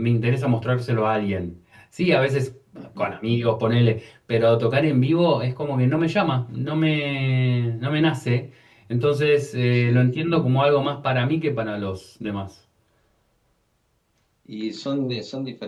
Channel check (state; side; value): identical; both; correlation 1.00